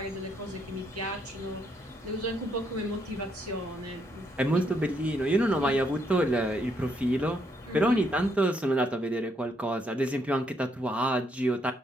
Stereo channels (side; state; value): both; normal; correlation 0.74